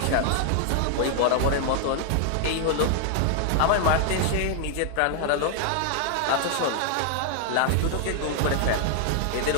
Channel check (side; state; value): both; different; correlation 0.00